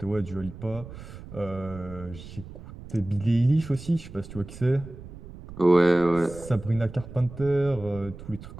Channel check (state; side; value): noise; right; rumble, 14 dB below the sound